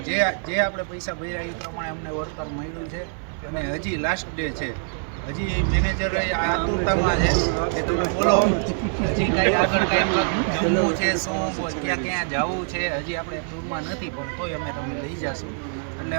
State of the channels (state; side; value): silent; left; 62 dB below the other